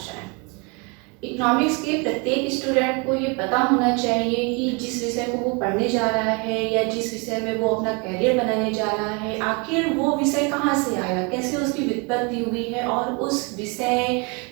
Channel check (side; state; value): left; quieter; 31.4 dB